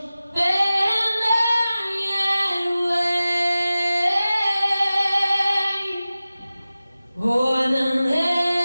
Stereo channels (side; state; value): both; inverted; correlation -0.96